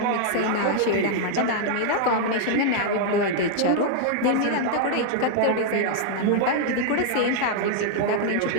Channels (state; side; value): different; both; correlation 0.00